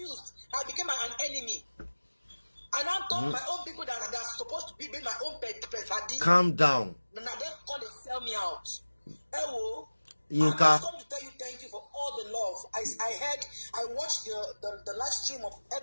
I became an enemy. And I told my own people that are supposed to be my own pet. Calm down. Now they come to sell me out. Ewo. Yinka. I come to tell you thank you for all the love. I watched the live stream of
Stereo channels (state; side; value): inverted; both; correlation -1.00